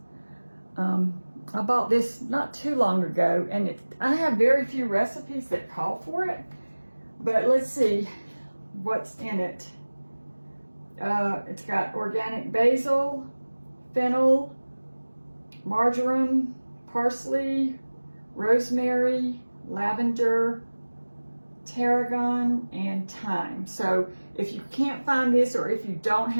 I bought this not too long ago, and I have very few recipes that call for it, but let's see what's in it. It's got organic basil, fennel, marjoram, parsley, rosemary, lavender, tarragon, and thyme. So if you can't find this, or if you don't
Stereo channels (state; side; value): inverted; both; correlation -1.00